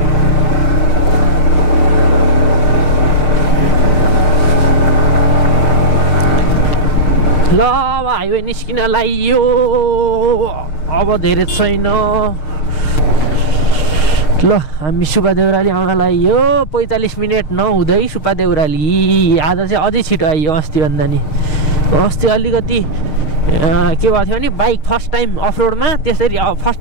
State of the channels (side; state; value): right; late; 6.4 ms